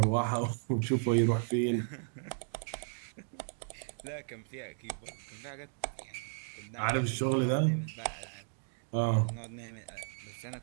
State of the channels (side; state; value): left; silent; digital silence